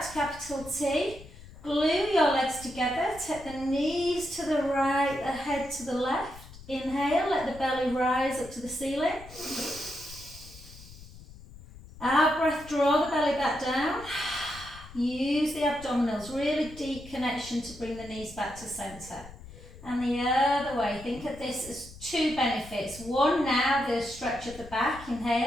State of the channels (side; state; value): left; noise; rumble, 18 dB below the sound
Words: to capital T. Glue your legs together, take the knees to the right, the head to the left. Inhale, let the belly rise up to the ceiling. Out breath, draw the belly back down. Use the abdominals, really deep connection to bring the knees back to centre. And the other way, think of this as 2 benefits. One now, the stretch of the back.